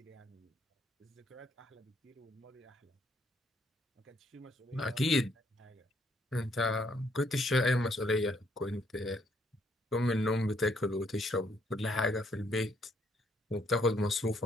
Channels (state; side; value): normal; both; correlation 0.69